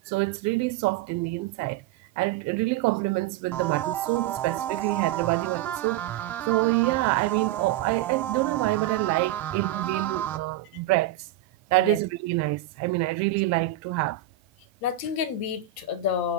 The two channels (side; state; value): left; quieter; 11.3 dB